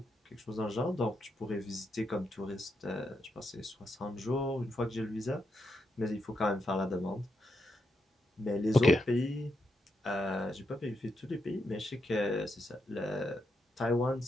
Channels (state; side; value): normal; both; correlation 0.83